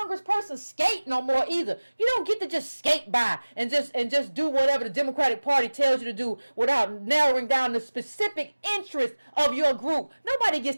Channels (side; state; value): both; inverted; correlation -1.00